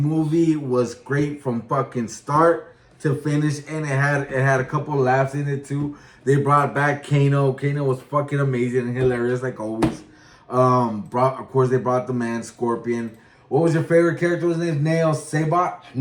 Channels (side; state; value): both; identical; correlation 1.00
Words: was great from fucking start to finish, and it had a couple of laughs in it too. They brought back Kano. Kano was fucking amazing and hilarious like always. Of course, they brought the man Scorpion. What was your favorite character? His name Nail Saibot?